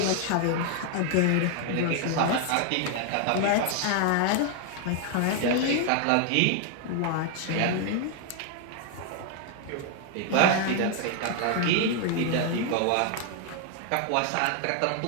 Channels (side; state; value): both; different; correlation 0.00